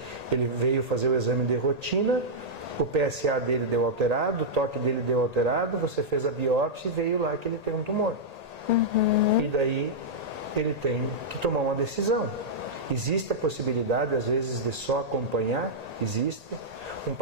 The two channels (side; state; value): left; late; 1.8 ms